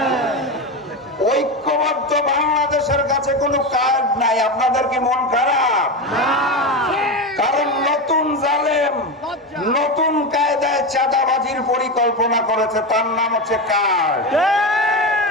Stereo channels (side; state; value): both; normal; correlation 0.17